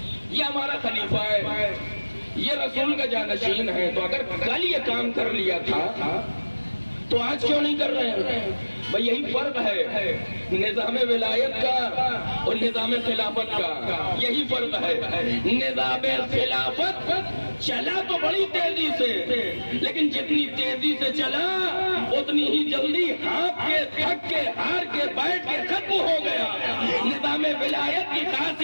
ये हमारा खलीफा है, ये रसूल का जानशीन है। तो अगर कल ये काम कर लिया था तो आज क्यों नहीं कर रहे हैं? भाई यही फर्क है निजाम विलायत का और निजाम खिलाफत का, यही फर्क है। निजाम खिलाफत चला तो बड़ी तेजी से, लेकिन जितनी तेजी से चला उतनी ही जल्दी हाँप के, थक के, हार के, बैठ के खत्म हो गया। निजाम विलायत की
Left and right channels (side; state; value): both; inverted; correlation -1.00